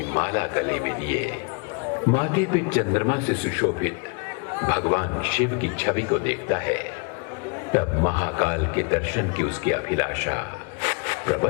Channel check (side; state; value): right; quieter; 35.4 dB